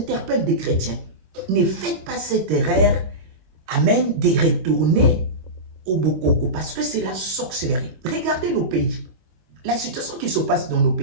des chrétiens. Ne faites pas cette erreur, amen, de retourner au Bokoko, parce que c'est la sorcellerie. Regardez nos pays. La situation qui se passe dans nos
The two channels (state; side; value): late; left; 25 ms